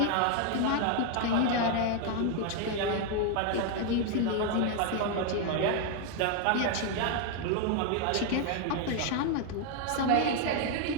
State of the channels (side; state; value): both; different; correlation 0.01